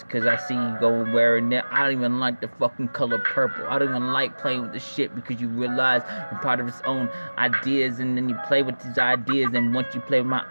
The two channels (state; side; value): inverted; both; correlation -1.00